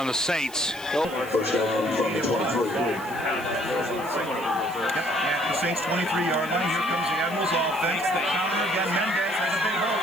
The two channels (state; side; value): noise; right; hiss, 19 dB below the sound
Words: the Saints. First down from the 23. The Saints 23-yard line. Here comes the Admirals offense. The counter again. Mendez has a big hole.